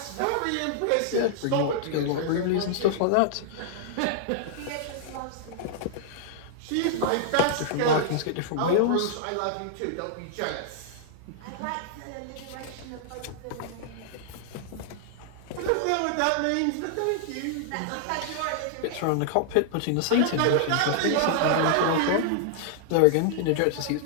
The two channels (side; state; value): both; different; correlation -0.01